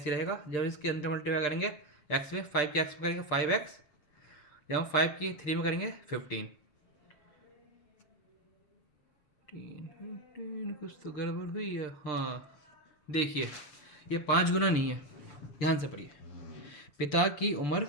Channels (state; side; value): late; right; 6.8 ms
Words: रहेगा, जब इसके अंदर मल्टीप्लाई करेंगे x में, 5 के x में करेंगे 5x, जब हम 5 की 3 में करेंगे 15। कुछ तो गड़बड़ हुई है। हाँ देखिए ये 5 गुना नहीं है, ध्यान से पढ़िए। पिता की उम्र